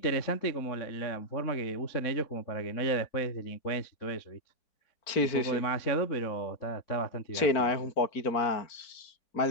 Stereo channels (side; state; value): right; late; 4.4 ms